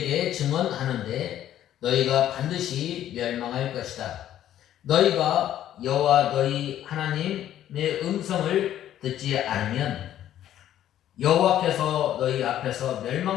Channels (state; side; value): quieter; right; 11.7 dB